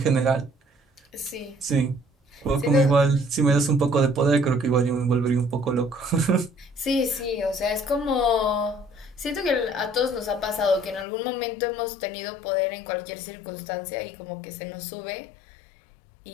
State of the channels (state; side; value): drops out; right; at 11.1 s